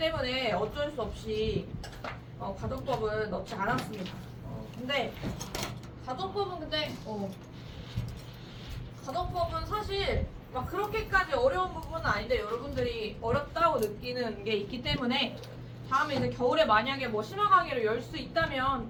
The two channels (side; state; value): both; identical; correlation 1.00